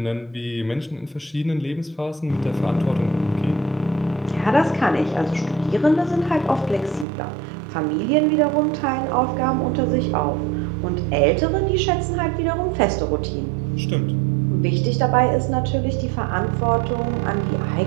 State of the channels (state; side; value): drops out; left; at 7.1 s